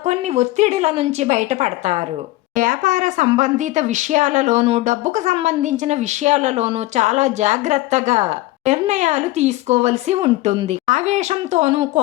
కొన్ని ఒత్తిడిల నుంచి బయటపడతారు. వ్యాపార సంబంధిత విషయాలలోనూ డబ్బుకు సంబంధించిన విషయాలలోనూ చాలా జాగ్రత్తగా నిర్ణయాలు తీసుకోవలసి ఉంటుంది. ఆవేశంతోనూ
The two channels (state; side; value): quieter; right; 18.3 dB